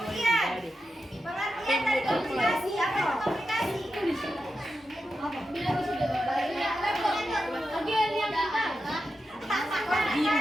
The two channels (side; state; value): both; normal; correlation 0.89